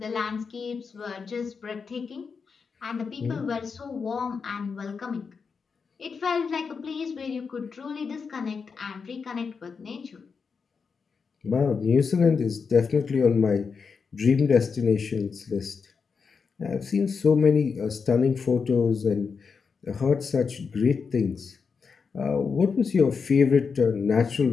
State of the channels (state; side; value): quieter; right; 5.5 dB